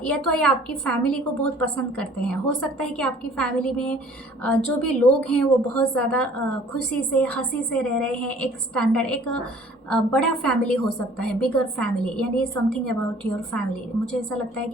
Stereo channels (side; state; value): both; normal; correlation 0.53